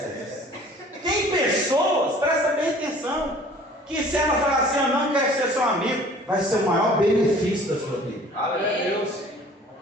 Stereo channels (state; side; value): normal; both; correlation 0.50